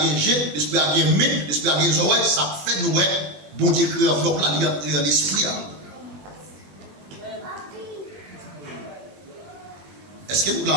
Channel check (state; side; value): late; left; 21 ms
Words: jet, l'esprit a bien main, l'esprit a bien oreilles, ça fait nous, bon Dieu crée enveloppe là, il y a l'esprit. Est-ce que nous